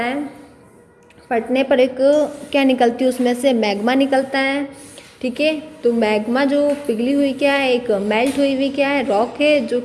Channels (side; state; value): both; identical; correlation 1.00